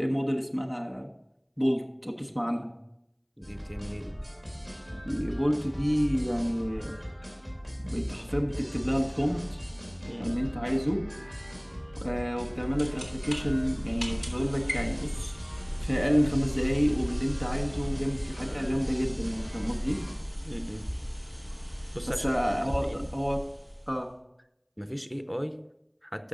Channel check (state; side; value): identical; both; correlation 1.00